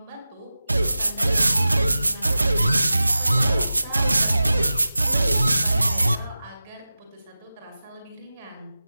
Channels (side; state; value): both; inverted; correlation -0.95